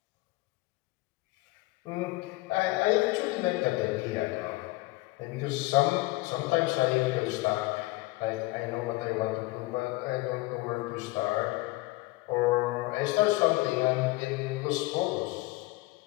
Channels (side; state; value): right; quieter; 21.1 dB